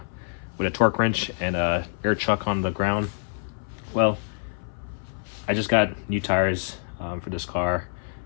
torque wrench and a air chuck on the ground. Well, I just got new tires for this car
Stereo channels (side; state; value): right; silent; 59 dB below the other